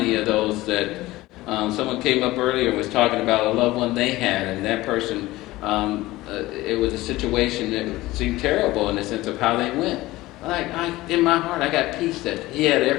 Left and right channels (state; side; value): quieter; right; 18.2 dB